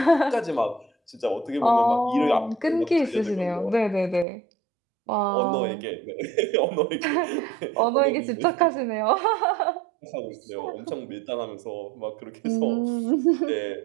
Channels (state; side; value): drops out; left; at 4.2 s